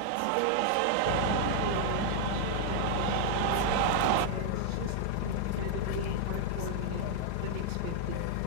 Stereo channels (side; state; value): both; different; correlation 0.00